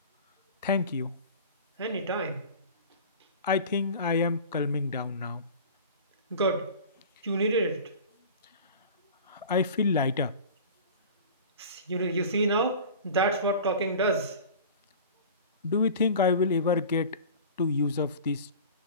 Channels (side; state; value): both; inverted; correlation -0.38